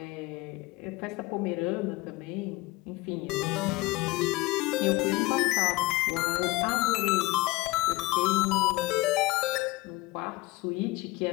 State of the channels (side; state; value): right; quieter; 21.1 dB